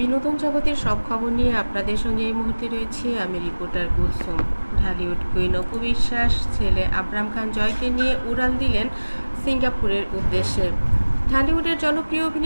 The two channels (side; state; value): both; inverted; correlation -1.00